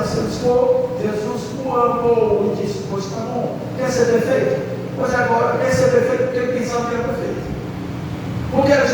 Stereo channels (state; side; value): identical; both; correlation 1.00